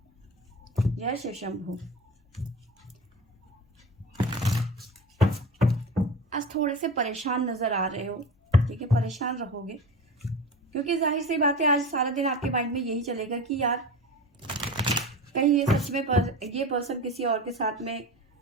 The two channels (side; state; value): both; normal; correlation 0.31